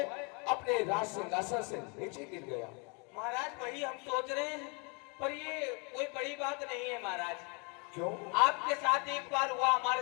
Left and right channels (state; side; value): quieter; right; 33.7 dB